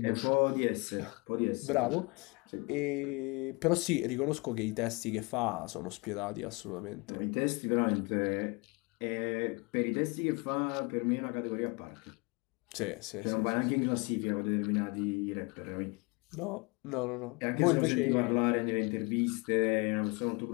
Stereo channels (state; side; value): quieter; right; 28.0 dB